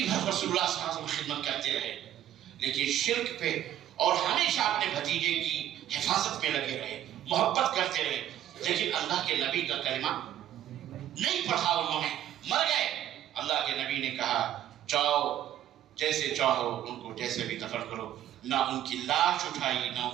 بھر رسول اللہ صلی اللہ علیہ وسلم خدمت کرتے رہے، لیکن شرک پہ اور ہمیشہ اپنے بھتیجے کی حفاظت میں لگے رہے، محبت کرتے رہے، لیکن اللہ کے نبی کا کلمہ نہیں پڑھا انہوں نے، مر گئے. اللہ کے نبی نے کہا جاؤ جیسے چاہو ان کو جیسے بھی دفن کرو. نہ ان کی لاش اٹھائی، نہ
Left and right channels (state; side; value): quieter; left; 11.9 dB